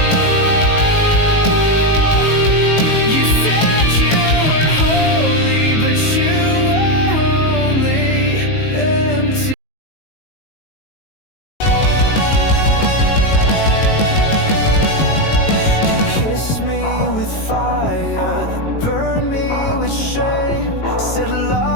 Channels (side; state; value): right; late; 19 ms